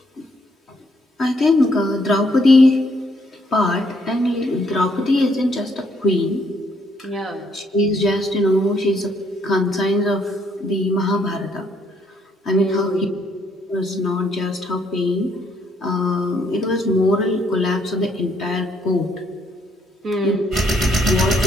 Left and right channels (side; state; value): both; normal; correlation 0.70